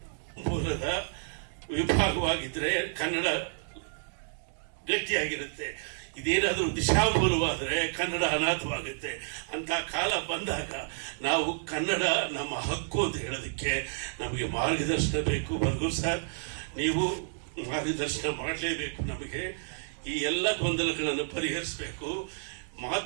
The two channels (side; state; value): left; silent; digital silence